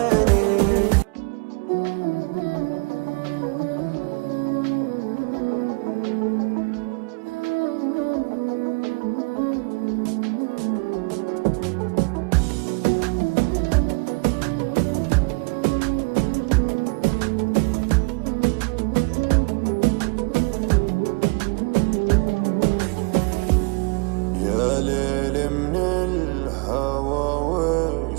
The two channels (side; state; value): left; quieter; 31.4 dB